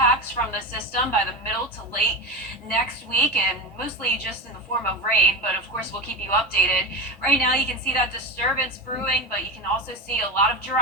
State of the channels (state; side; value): normal; both; correlation 0.21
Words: from the system by the middle to late next week, and mostly just in the form of rain, but of course we'll keep you updated. Right now you can see that disturbance brewing, but you can also see a lot of